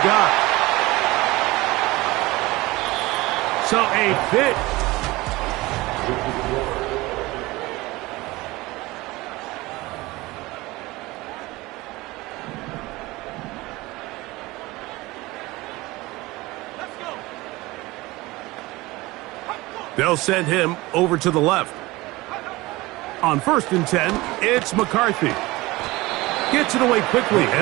got. So a bit. They'll send him over to the left. On first and 10, it's McCarthy. Gets it away quickly,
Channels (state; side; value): quieter; left; 20.6 dB